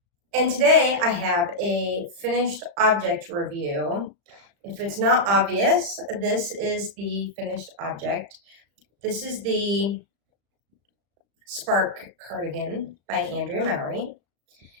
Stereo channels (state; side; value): late; left; 35 ms